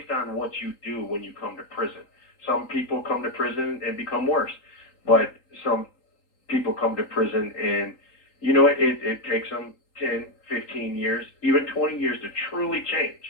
on what you do when you come to prison. Some people come to prison and become worse, but some people come to prison and it takes them 10, 15 years, even 20 years to truly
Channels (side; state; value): right; late; 3.8 ms